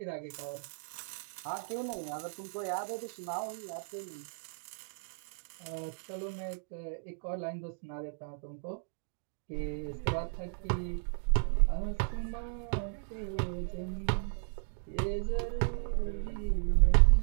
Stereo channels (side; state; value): left; silent; digital silence